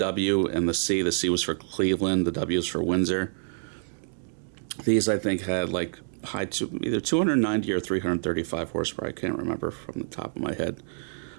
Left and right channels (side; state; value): left; silent; digital silence